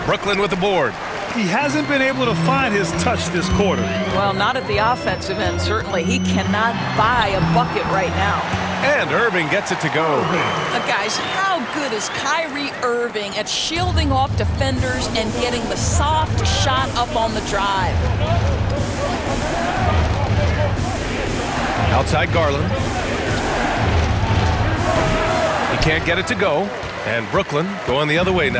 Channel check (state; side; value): identical; both; correlation 1.00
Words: Brooklyn with the board. He hasn't been able to find his touch this quarter. Well, not at the offensive end, certainly. He cannot buy a bucket right now. And Irving gets it to go. Guys, how good is Kyrie Irving at shielding off defenders and getting the soft shot up on the drive? Outside Garland. He can't get it to go. And Brooklyn going the other way